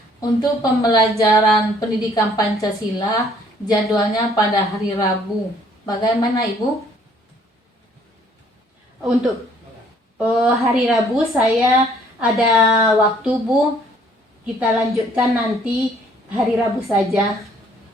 Untuk pembelajaran pendidikan Pancasila, jadwalnya pada hari Rabu. Bagaimana Ibu? Untuk hari Rabu saya ada waktu Bu. Kita lanjutkan nanti hari Rabu saja.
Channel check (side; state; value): both; normal; correlation 0.61